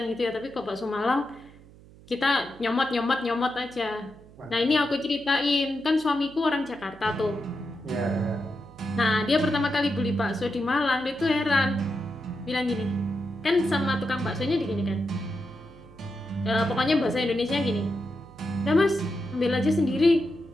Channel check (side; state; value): right; noise; hum, 23 dB below the sound